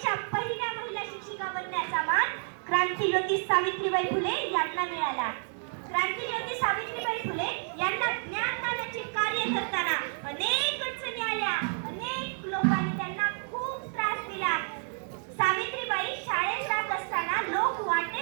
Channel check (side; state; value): left; silent; 58 dB below the other